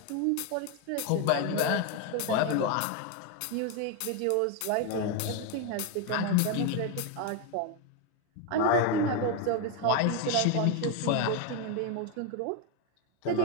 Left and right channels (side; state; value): both; different; correlation 0.02